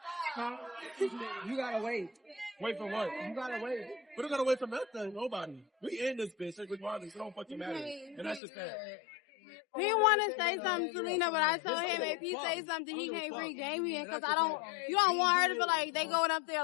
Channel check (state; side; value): drops out; right; at 8.4 s